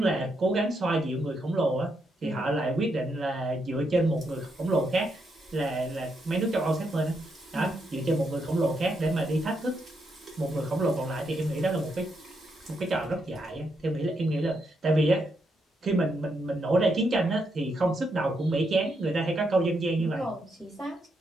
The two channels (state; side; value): normal; both; correlation 0.80